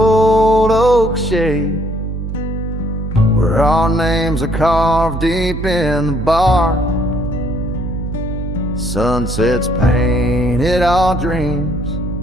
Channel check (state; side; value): noise; right; hum, 5 dB below the sound